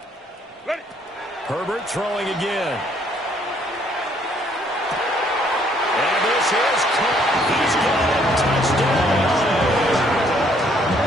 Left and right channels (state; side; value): normal; both; correlation 0.65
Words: Ready. Herbert throwing again. And this is caught. He's got it. Touchdown.